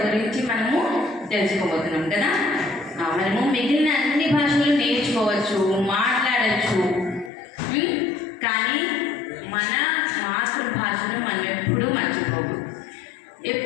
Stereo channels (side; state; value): right; drops out; at 7.3 s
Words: గురించి మనము తెలుసుకోబోతున్నాం కదా. మనము మిగిలిన అన్ని భాషలు నేర్చుకోవచ్చు, మాట్లాడచ్చు, కానీ మన మాతృభాషను మనం ఎప్పుడూ మర్చిపోకూడదు.